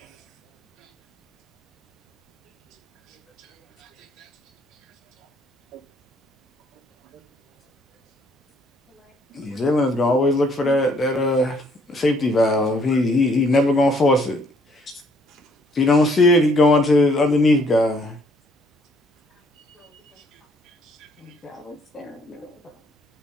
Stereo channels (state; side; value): normal; both; correlation 0.65